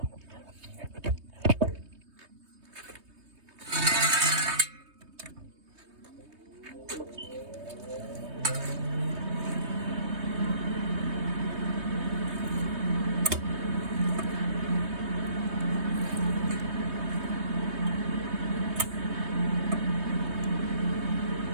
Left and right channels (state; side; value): late; left; 3.2 ms